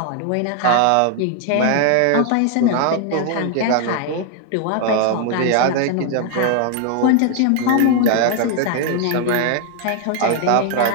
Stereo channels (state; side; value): different; both; correlation 0.00